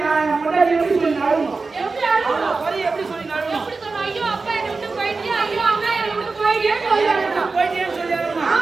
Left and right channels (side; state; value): left; quieter; 4.1 dB